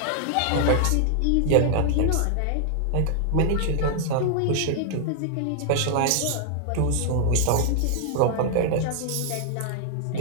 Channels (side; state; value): both; different; correlation -0.01